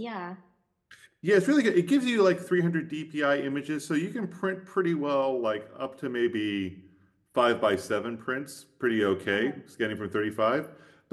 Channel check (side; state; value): both; identical; correlation 1.00